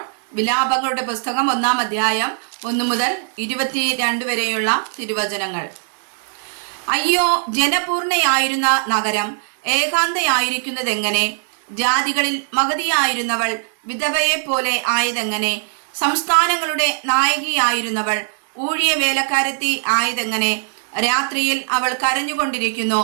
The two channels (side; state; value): left; silent; digital silence